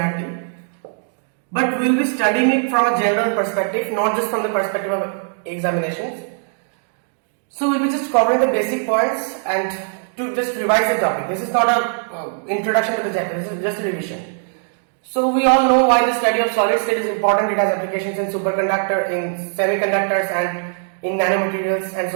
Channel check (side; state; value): left; silent; digital silence